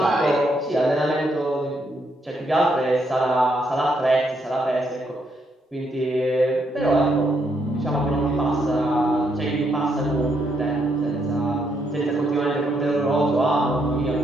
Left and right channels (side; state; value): both; normal; correlation 0.76